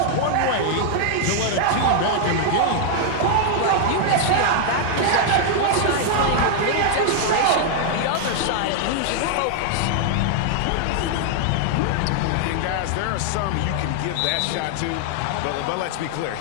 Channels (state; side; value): different; both; correlation 0.00